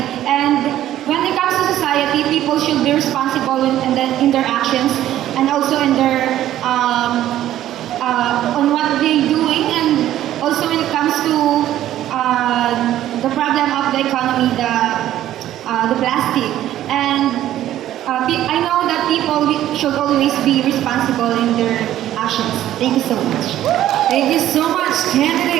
And when it comes to society, people should be responsible in their actions and also in their on what they're doing, and also when it comes to the problem of the economy, the plastic. And I know that people should always be responsible in their actions. Thank you so much. Thank you so much,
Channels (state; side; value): quieter; left; 12.7 dB